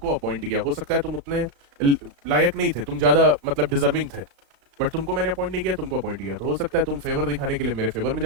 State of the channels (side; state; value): left; late; 35 ms